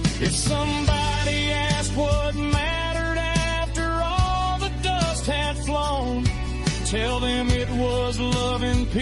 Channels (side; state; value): both; identical; correlation 1.00